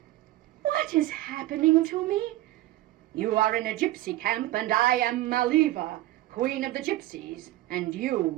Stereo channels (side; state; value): left; quieter; 16.2 dB